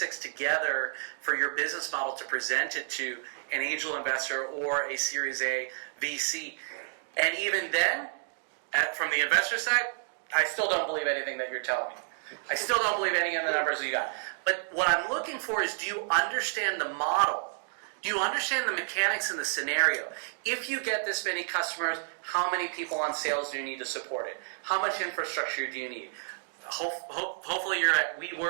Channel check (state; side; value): silent; left; digital silence